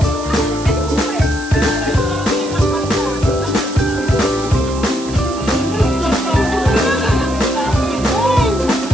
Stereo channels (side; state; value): right; noise; hiss, 15 dB below the sound